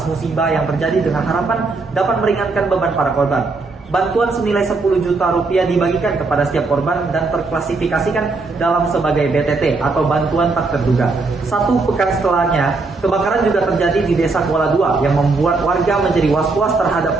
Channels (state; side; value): quieter; left; 3.8 dB